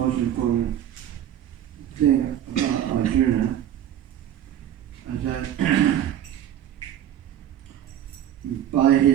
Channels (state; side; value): quieter; left; 10.9 dB